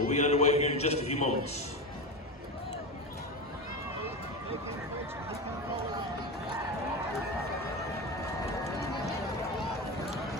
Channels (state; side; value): normal; both; correlation 0.21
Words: be underway here in just a few moments.